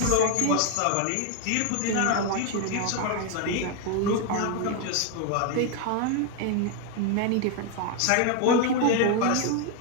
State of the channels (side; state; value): both; different; correlation 0.01